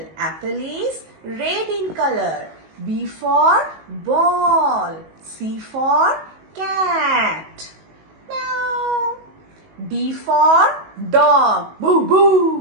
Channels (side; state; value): left; late; 19 ms